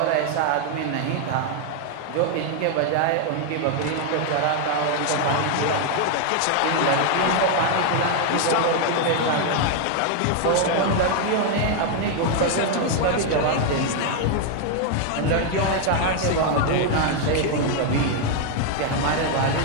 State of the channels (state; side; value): different; both; correlation 0.00